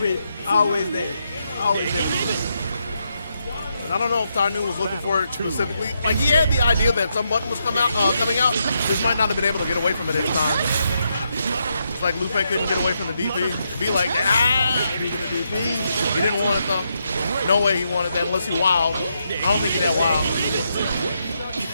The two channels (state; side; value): inverted; both; correlation -0.81